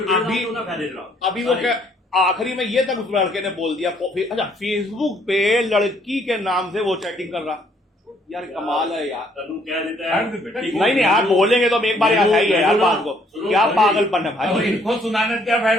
अभी- ਉਹਨਾਂ ਫਾਇਦੇ ਜਰਾ अभी वो क्या आखिरी में ये तक उस लड़के ने बोल दिया, अच्छा फेसबुक पे लड़की के नाम से वो चैटिंग कर रहा। यार कमाल है यार। ਤੈਨੂੰ ਕਹਿ ਦਿੱਤਾ हर बेटा नहीं आप बोलेंगे तो हम एक बार ऐसा ही है यार बात को, क्या पागलपन है अब भाई। इनको सुनाने का क्या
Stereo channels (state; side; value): normal; both; correlation 0.66